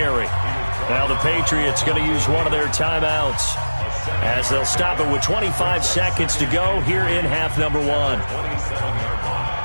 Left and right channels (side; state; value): both; inverted; correlation -1.00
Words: Now the Patriots going to use one of their timeouts as they'll stop it with 25 seconds to go here in half number 1. A